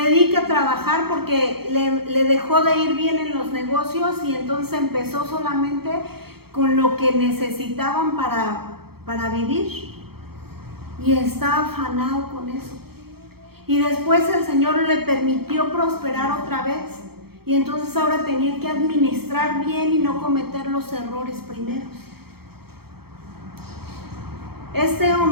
a trabajar porque le dejó de ir bien en los negocios, y entonces empezó solamente con lo que necesitaban para vivir. Y está afanado con eso. Y después el Señor le permitió prosperar otra vez. Y entonces ahora tenía que administrar bien y no cometer los errores primeros. Este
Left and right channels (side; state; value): left; late; 0.96 ms